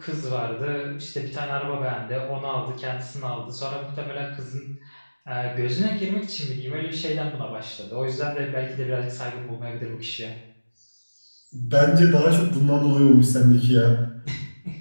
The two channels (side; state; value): both; inverted; correlation -1.00